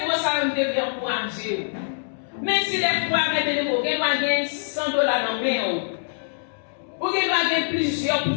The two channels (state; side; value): silent; right; digital silence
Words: moi ça me devrait encourager. Même si les fois, mes bénévoles, vous avez $100 dans le main, vous avez plusieurs